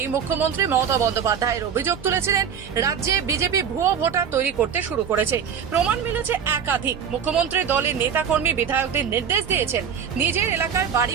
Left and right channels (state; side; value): quieter; left; 7.6 dB